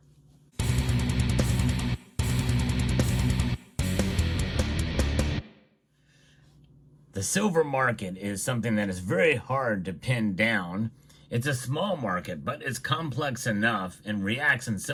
The silver market is something that is very hard to pin down. It's a small market, but it's complex enough and reacts in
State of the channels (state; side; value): identical; both; correlation 1.00